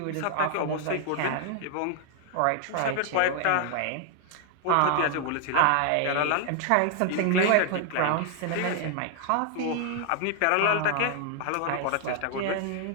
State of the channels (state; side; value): different; both; correlation 0.00